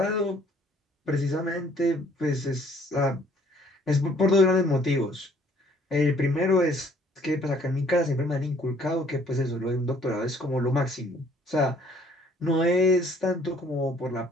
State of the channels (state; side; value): normal; both; correlation 0.60